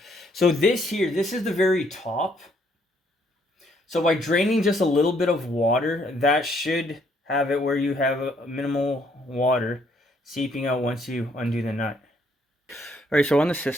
So this here, this is the very top. So by draining just a little bit of water, that should have it where you have a minimal water seeping out once you undo the nut. Alright, so on the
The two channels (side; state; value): both; normal; correlation 0.68